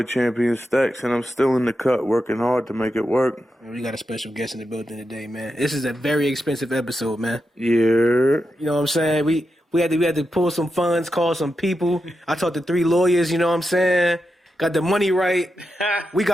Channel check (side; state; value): both; normal; correlation 0.87